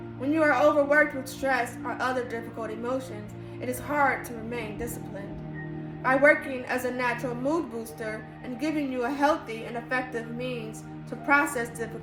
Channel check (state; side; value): identical; both; correlation 1.00